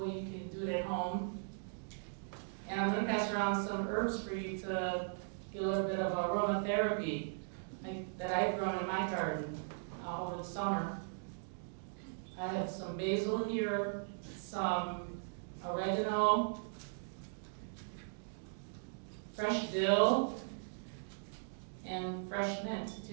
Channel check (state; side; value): silent; left; digital silence